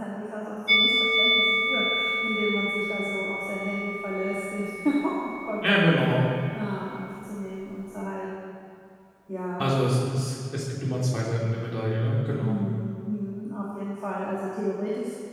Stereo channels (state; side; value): identical; both; correlation 1.00